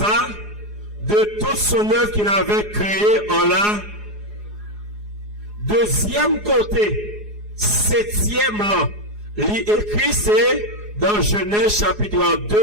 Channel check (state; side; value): late; left; 4.8 ms